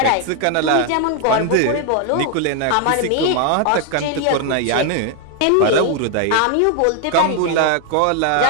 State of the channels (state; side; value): different; both; correlation 0.00